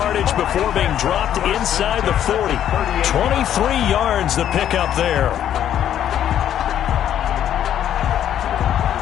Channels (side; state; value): right; quieter; 10.5 dB